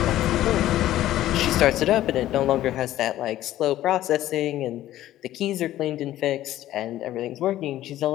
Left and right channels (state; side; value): quieter; right; 13.9 dB